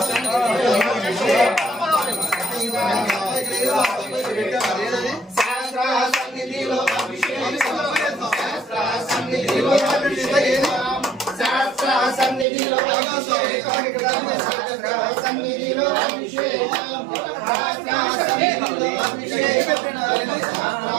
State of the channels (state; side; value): drops out; left; at 12.5 s